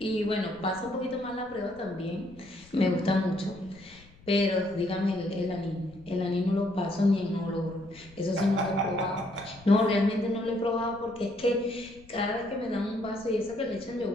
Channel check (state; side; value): noise; left; rumble, 24 dB below the sound